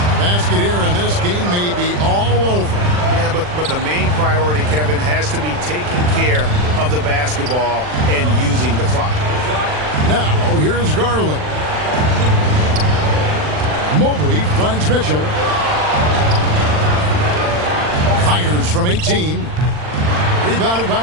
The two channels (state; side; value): late; left; 40 ms